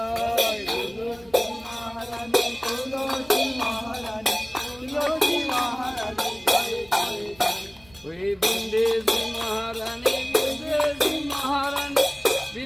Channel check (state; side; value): noise; right; rumble, 27 dB below the sound